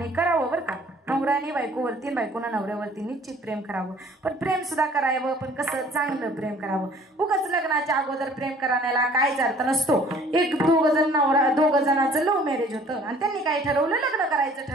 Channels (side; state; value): both; normal; correlation 0.54